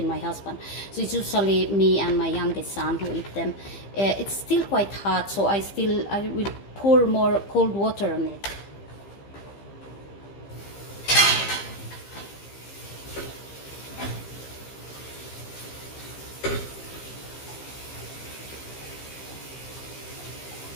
my husband. So it's usually me and my youngest son who eat them. It's still quite hot, so I will pour more cold water on it.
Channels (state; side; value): late; right; 15 ms